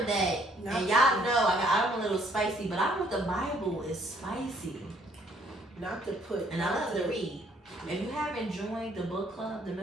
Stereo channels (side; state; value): both; normal; correlation 0.65